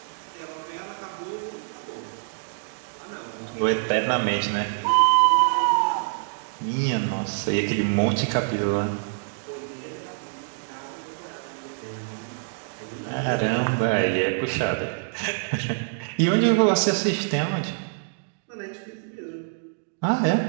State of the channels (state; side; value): silent; left; digital silence